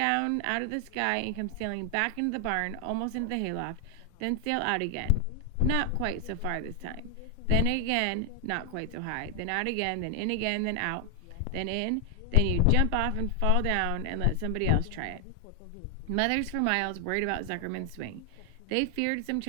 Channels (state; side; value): different; both; correlation 0.00